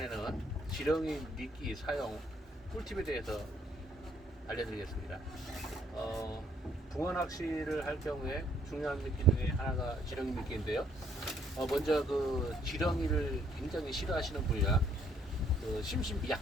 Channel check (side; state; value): both; normal; correlation 0.67